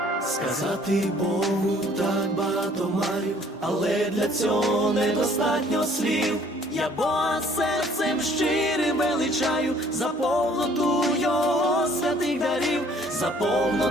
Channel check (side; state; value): both; normal; correlation 0.58